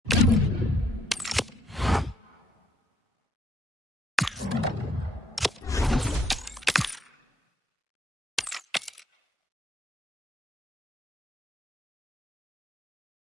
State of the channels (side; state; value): both; normal; correlation 0.69